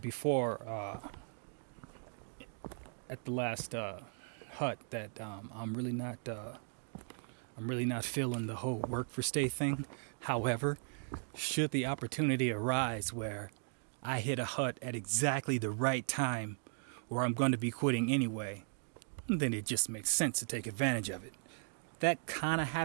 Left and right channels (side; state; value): left; silent; digital silence